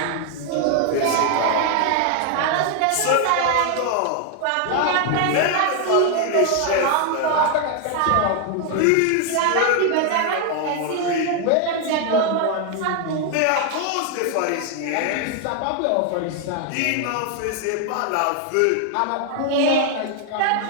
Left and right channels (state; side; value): different; both; correlation 0.00